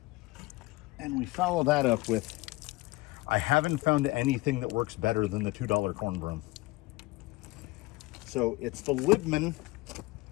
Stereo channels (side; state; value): right; quieter; 21.4 dB